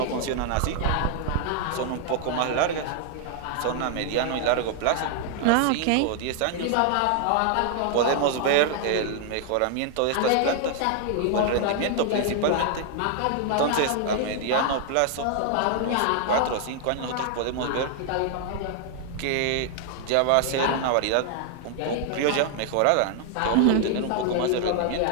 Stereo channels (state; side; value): different; both; correlation 0.00